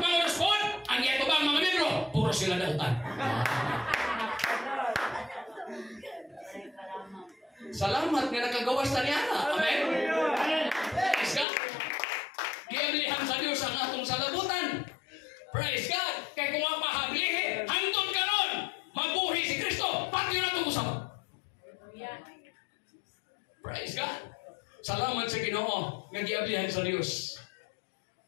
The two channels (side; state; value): right; drops out; at 11.5 s